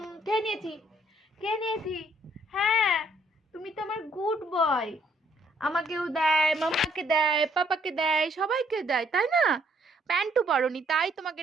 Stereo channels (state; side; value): normal; both; correlation 0.67